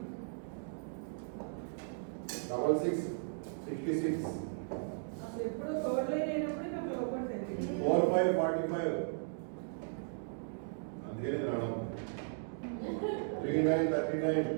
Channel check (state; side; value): silent; left; digital silence